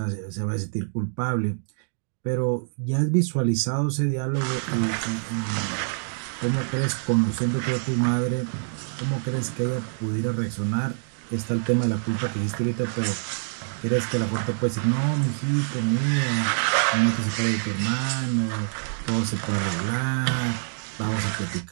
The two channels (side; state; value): left; silent; digital silence